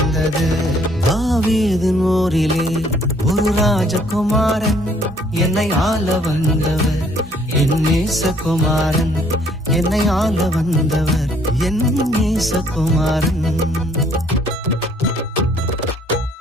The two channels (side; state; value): both; normal; correlation 0.63